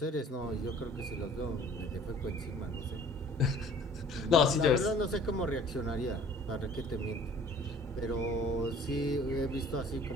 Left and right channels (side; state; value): both; normal; correlation 0.51